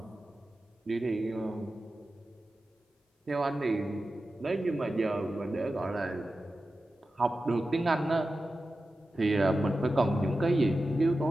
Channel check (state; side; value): normal; both; correlation 0.93